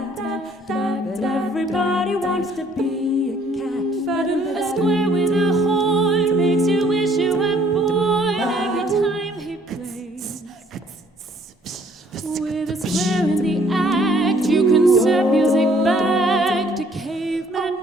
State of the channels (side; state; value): both; normal; correlation 0.61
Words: but everybody wants to be a cat. A square with a horn makes you wish you were born every time he plays. With a square in the act, you can set music back to